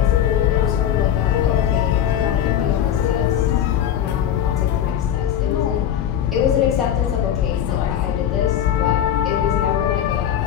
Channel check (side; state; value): right; quieter; 10.0 dB